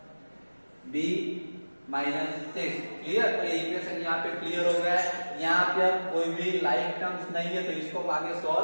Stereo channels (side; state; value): both; inverted; correlation -1.00